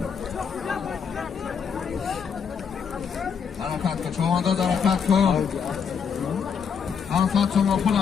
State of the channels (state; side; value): quieter; right; 6.7 dB